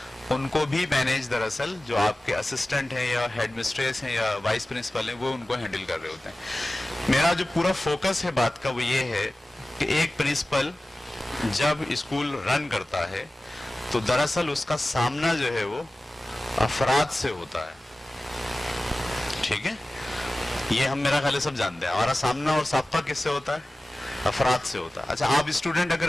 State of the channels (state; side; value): normal; both; correlation 0.96